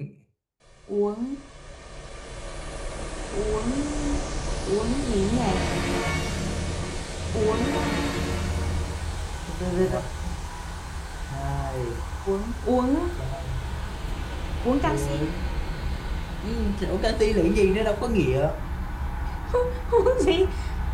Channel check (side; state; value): both; identical; correlation 1.00